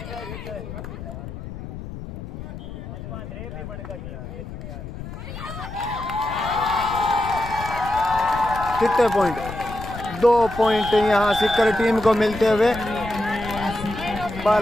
कितने पॉइंट 2 पॉइंट यहाँ सिक्कर टीम को मिलते हुए।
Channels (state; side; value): noise; left; rumble, 10 dB below the sound